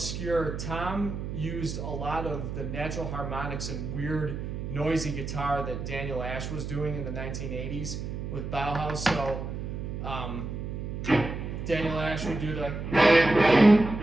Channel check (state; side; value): noise; right; hum, 6 dB below the sound